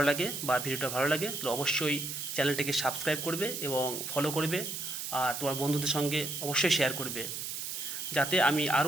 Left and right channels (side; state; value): right; noise; hiss, 5 dB below the sound